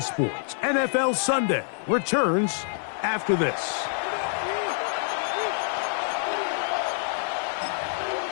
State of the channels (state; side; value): silent; right; 56 dB below the other